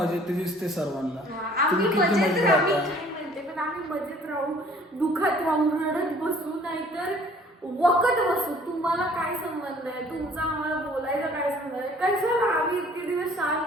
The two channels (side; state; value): both; normal; correlation 0.54